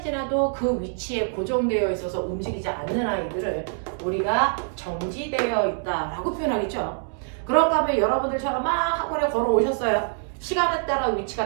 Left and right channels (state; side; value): silent; left; digital silence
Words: 지나도 그 위치에 고정되어 있어서 움직이지 않는 아이들을 우리가 정지되어 있다라고 표현하겠죠. 그런가 하면 여러분들처럼 막 학원에 걸어오셨어요. 시간에 따라 위치가